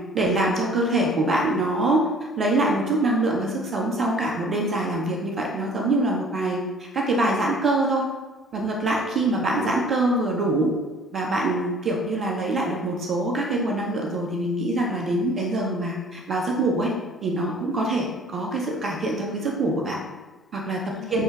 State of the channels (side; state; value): both; normal; correlation 0.52